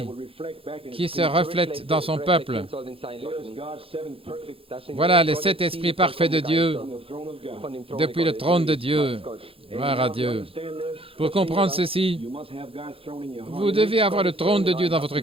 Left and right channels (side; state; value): left; late; 0.27 ms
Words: qui se reflètent dans son peuple. Voilà les 7 esprits parfaits de Dieu depuis le trône de Dieu. Gloire à Dieu. Pour comprendre ceci, vous devez avoir le trône de Dieu dans votre